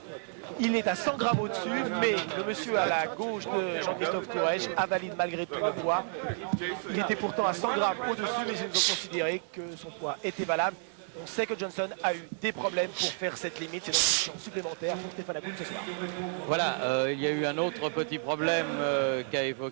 Il est à 100 grammes au-dessus, mais le monsieur à la gauche de Jean-Christophe Courrèges valide malgré tout le poids. Il était pourtant à 100 grammes au-dessus, mais ils ont considéré que son poids était valable. On sait que Johnson a eu des problèmes pour faire cette limite. C'est donc une chance supplémentaire pour Stéphane Hakoun ce soir. Voilà, il y a eu un autre petit problème qu'a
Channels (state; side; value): silent; left; 57 dB below the other